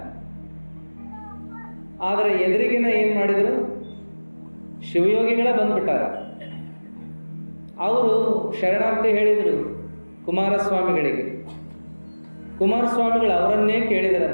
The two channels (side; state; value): both; inverted; correlation -1.00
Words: ಆದರೆ ಎದುರಿಗಿನ ಏನು ಮಾಡಿದ್ರು, ಶಿವಯೋಗಿಗಳ ಬಂದ್ಬಿಟ್ಟಾರ. ಅವರು ಶರಣಾರ್ಥಿ ಹೇಳಿದರು ಕುಮಾರಸ್ವಾಮಿಗಳಿಗೆ. ಕುಮಾರಸ್ವಾಮಿಗಳು ಅವರನ್ನೇ